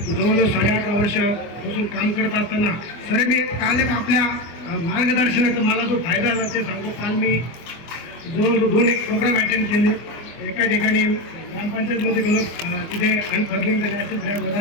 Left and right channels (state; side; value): late; right; 24 ms